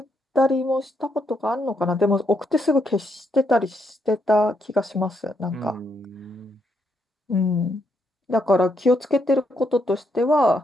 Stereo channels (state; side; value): normal; both; correlation 0.77